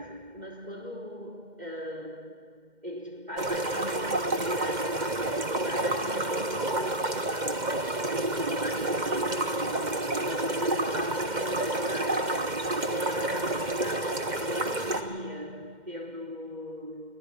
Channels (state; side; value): late; left; 2.1 ms